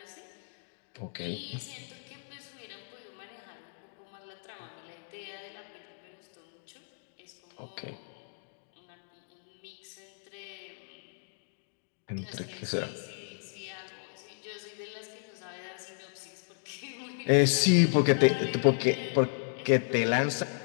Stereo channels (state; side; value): silent; right; digital silence